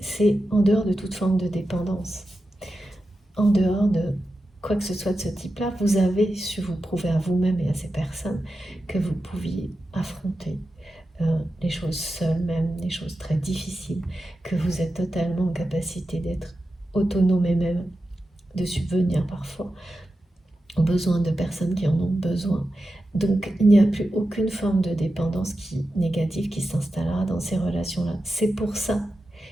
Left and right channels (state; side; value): normal; both; correlation 0.91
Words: en dehors de toute forme de dépendance. En dehors de quoi que ce soit de ce type-là, vous avez su vous prouver à vous-même et à ces personnes que vous pouviez affronter les choses seules, même les choses très difficiles, que vous êtes totalement en capacité d'être autonome et même de subvenir parfois aux besoins de personnes qui en ont besoin. Donc il n'y a plus aucune forme de dépendance négative qui s'installera dans ces relations-là. C'est pour ça